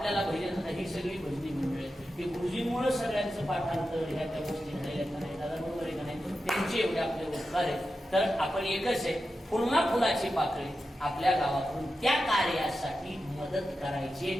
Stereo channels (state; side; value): normal; both; correlation 0.91